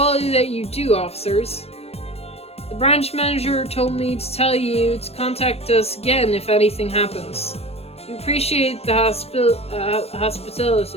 that you do, officers. The branch manager told me to tell you to contact us again if anything happens. We appreciate the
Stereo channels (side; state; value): right; late; 0.29 ms